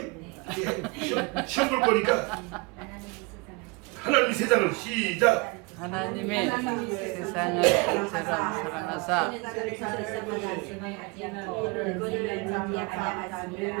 시험 볼 거니까 하나님이 세상을 시작 하나님의 세상을 이처럼 사랑하사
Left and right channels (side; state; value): left; quieter; 28.3 dB